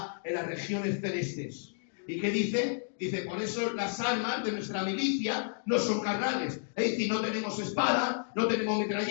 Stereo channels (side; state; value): right; silent; digital silence